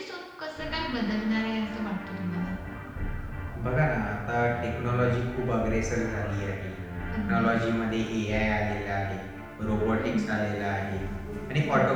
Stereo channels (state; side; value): identical; both; correlation 1.00